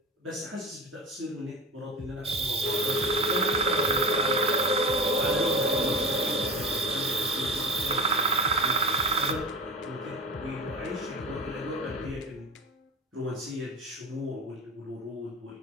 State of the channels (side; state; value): both; normal; correlation 0.33